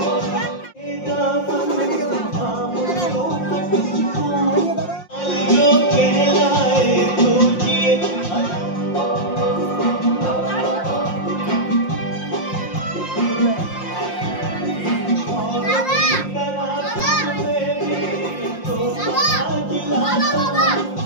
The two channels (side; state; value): right; late; 5.7 ms